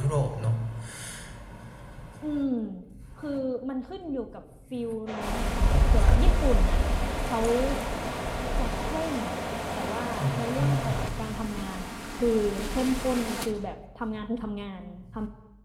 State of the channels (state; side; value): identical; both; correlation 1.00